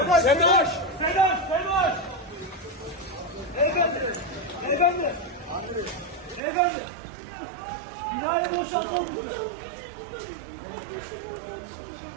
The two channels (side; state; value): left; drops out; at 6.4 s